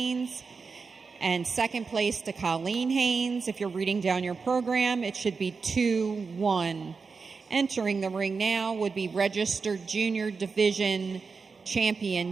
And second place to Colleen Haynes. If you're reading down your program, it should be 2-1. Entering the ring now would be registered junior division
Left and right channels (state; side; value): quieter; left; 4.8 dB